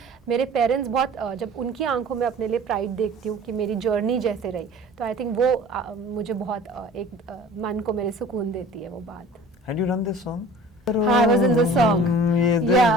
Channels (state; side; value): normal; both; correlation 0.45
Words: मेरे पेरेंट्स बहुत जब उनकी आंखों में अपने लिए प्राइड देखती हूँ कि मेरी जर्नी जैसे रही, तो आई थिंक वो मुझे बहुत एक मन को मेरे सुकून देती है वो बात। Had you done this song? I was in the song. Yeah,